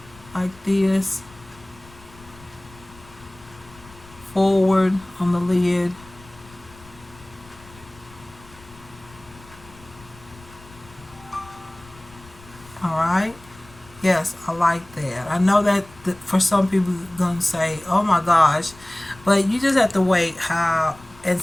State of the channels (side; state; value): left; noise; rumble, 22 dB below the sound